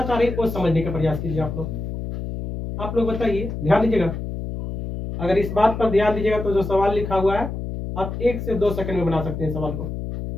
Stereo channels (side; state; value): left; noise; hum, 6 dB below the sound